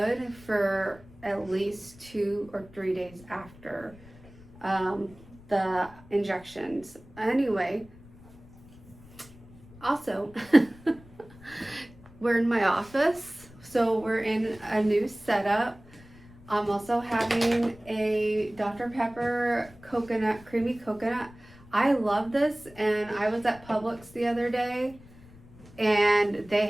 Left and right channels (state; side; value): noise; left; rumble, 22 dB below the sound